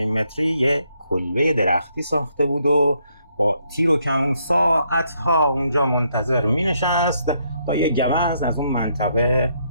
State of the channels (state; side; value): inverted; both; correlation -0.74